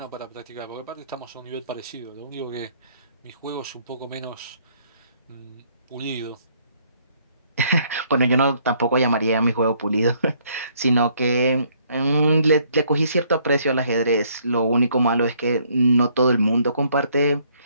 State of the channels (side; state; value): both; inverted; correlation -0.66